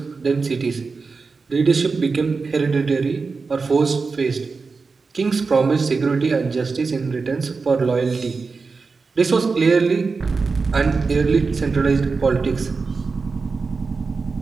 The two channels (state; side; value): quieter; left; 4.5 dB